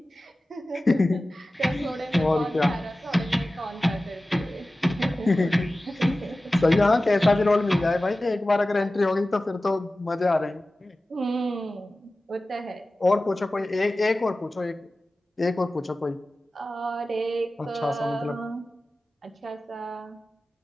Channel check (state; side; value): normal; both; correlation 0.96